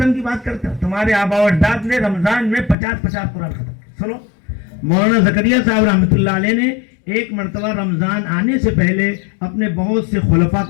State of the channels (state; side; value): drops out; right; at 2.8 s